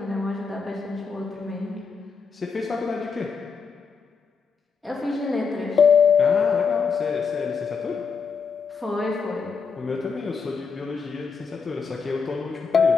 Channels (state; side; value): quieter; right; 5.6 dB